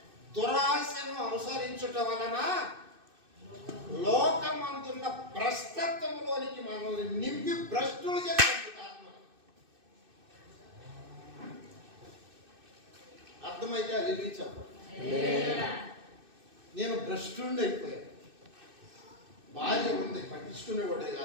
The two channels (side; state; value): left; late; 2.6 ms